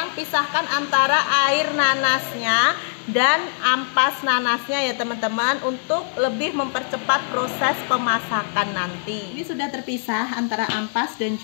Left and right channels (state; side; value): silent; right; digital silence